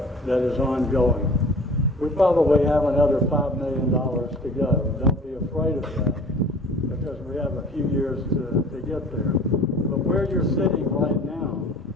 that is ongoing. We probably have another $5 million to go. Don't be afraid of that, because we have a few years to get there. But where you're sitting right now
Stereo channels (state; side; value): normal; both; correlation 0.46